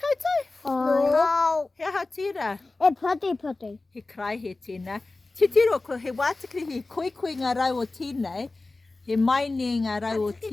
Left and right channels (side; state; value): right; quieter; 3.3 dB